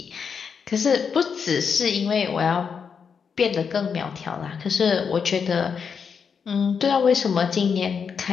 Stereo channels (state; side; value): quieter; right; 6.3 dB